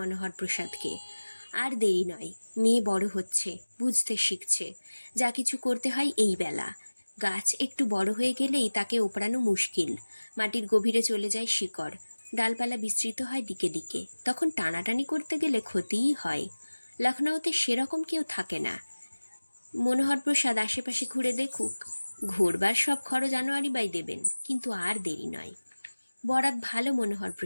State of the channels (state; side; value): inverted; both; correlation -1.00